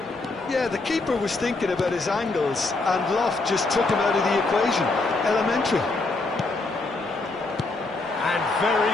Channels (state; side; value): quieter; right; 3.4 dB